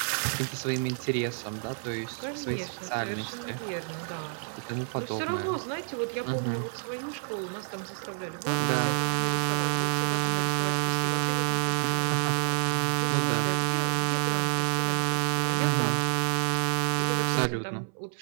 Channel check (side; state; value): left; silent; 58 dB below the other